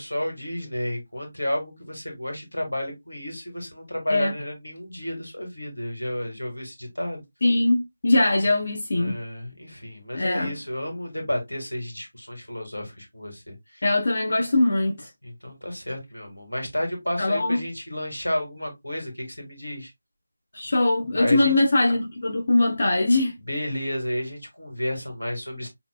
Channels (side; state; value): both; inverted; correlation -0.94